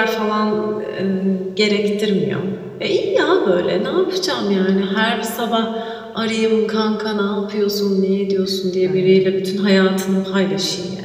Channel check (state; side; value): identical; both; correlation 1.00